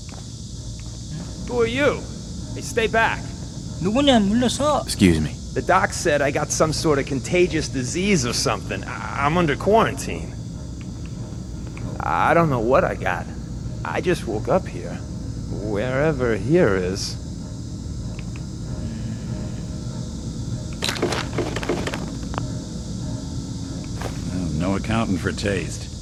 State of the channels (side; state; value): both; identical; correlation 1.00